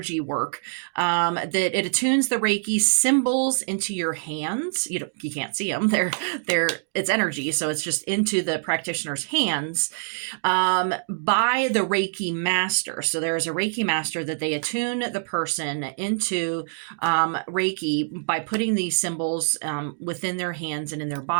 work that it attunes the Reiki symbols into your hands. You can't see them. It's energy, so it's just into the practitioner's hands by the Reiki master. So there is a Reiki master that they attune the person into Reiki by putting these symbols within their hands and in their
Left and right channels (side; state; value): left; silent; digital silence